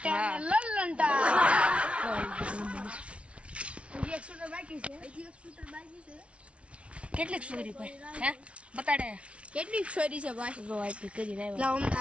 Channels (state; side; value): late; left; 0.061 ms